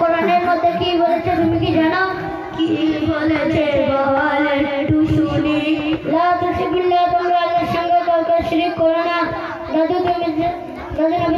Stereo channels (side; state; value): both; identical; correlation 1.00